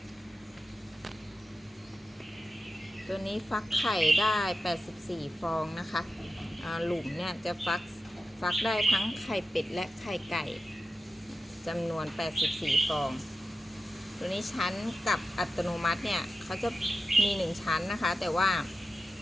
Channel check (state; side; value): normal; both; correlation 0.91